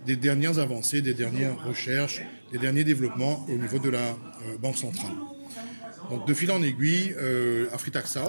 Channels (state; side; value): inverted; both; correlation -1.00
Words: des dernières avancées, des dernières recherches, des derniers développements au niveau de la Banque centrale. Donc, de fil en aiguille, Afritac